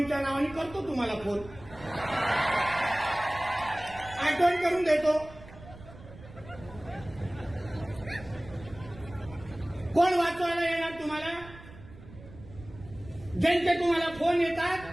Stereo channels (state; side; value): noise; right; rumble, 18 dB below the sound